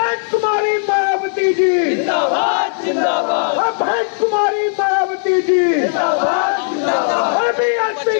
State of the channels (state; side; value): silent; right; 64 dB below the other